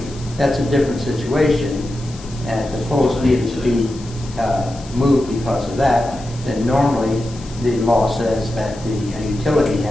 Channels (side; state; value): left; noise; hiss, 19 dB below the sound